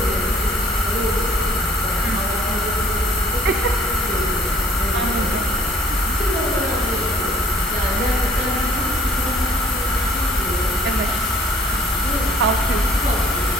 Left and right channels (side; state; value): both; normal; correlation 0.57